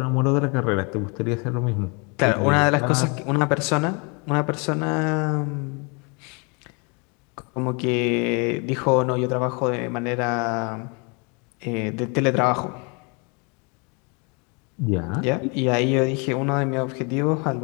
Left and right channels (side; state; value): right; quieter; 32.5 dB